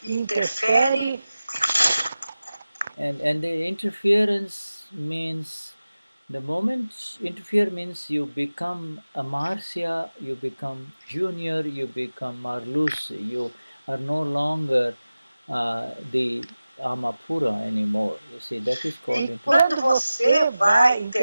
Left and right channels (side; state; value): both; inverted; correlation -0.96